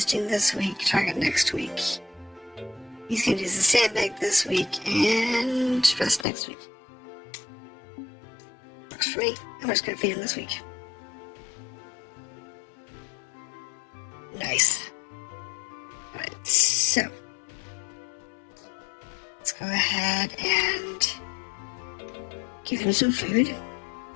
this week, target next week. He's going to use the sandbag this week and rest next week. Works for me. I'm just going to feed him this week. Nice. Alright, so let's go ahead and give him some food.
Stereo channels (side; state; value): right; drops out; at 6.2 s